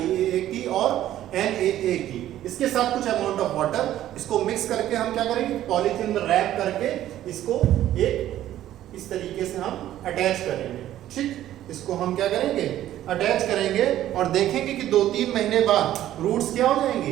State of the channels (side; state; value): left; quieter; 12.8 dB